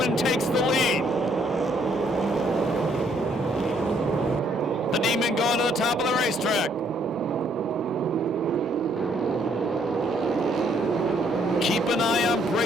takes the lead. The Demon going to the top of the racetrack. Keep an eye on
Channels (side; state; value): both; normal; correlation 0.68